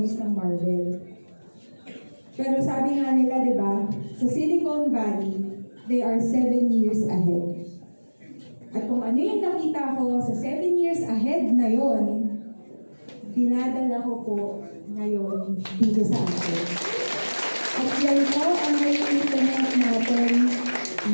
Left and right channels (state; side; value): inverted; both; correlation -1.00